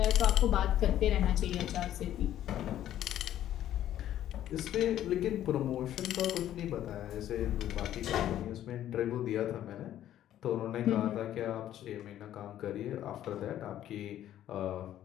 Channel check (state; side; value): quieter; right; 12.0 dB